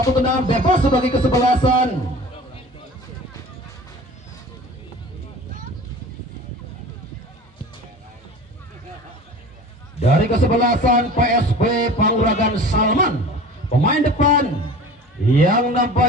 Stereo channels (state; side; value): normal; both; correlation 0.40